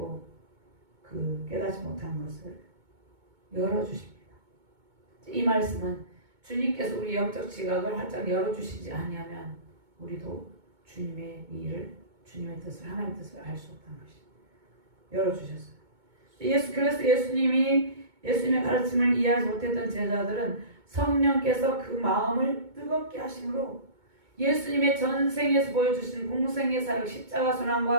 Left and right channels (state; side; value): late; left; 2.2 ms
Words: 그 깨닫지 못한 것을 열어주십니다. 이 말씀은 주님께서 우리 영적 지각을 활짝 열어주시지 아니하면 우리도 주님의 일을 주님의 뜻을 하나님의 뜻을 알 수 없다는 것이 열어주셨어요. 그래서 예수님의 가르침을 이해하지 못했던 제자들은 성령께서 그 마음을 뜨겁게 하심으로 예수님의 전생에서 보여주신 공생의 사역, 십자가